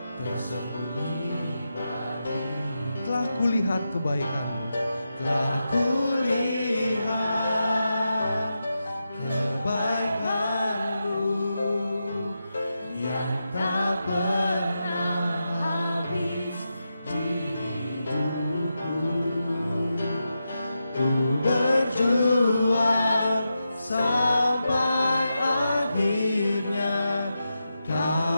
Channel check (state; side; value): inverted; both; correlation -0.88